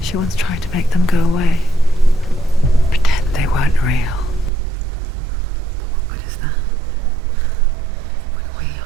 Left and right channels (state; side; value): drops out; left; at 4.5 s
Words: She once tried to make them go away. Pretend they weren't real. But what good is that? When we